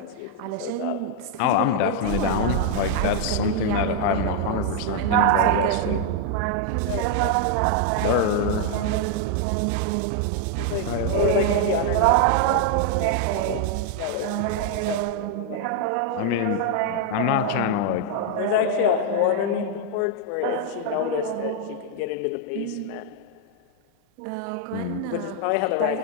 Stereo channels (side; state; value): both; different; correlation 0.00